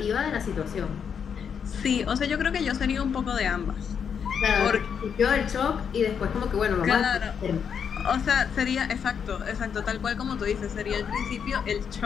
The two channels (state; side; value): quieter; right; 7.2 dB